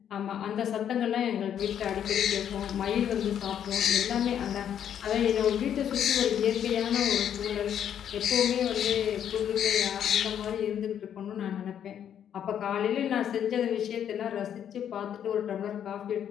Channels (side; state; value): right; quieter; 9.4 dB